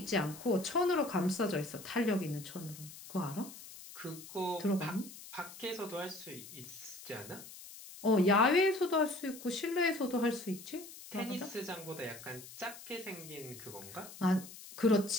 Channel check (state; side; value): noise; left; hiss, 15 dB below the sound